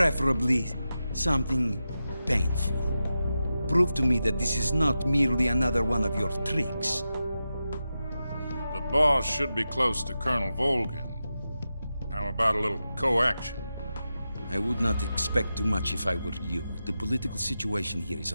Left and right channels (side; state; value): both; inverted; correlation -0.91